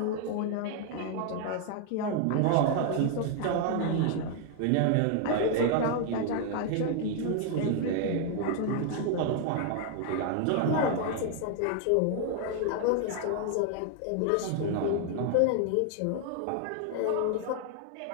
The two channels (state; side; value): different; both; correlation 0.00